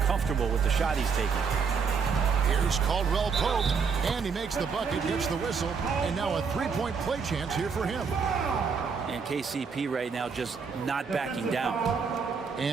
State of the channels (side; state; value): left; quieter; 5.6 dB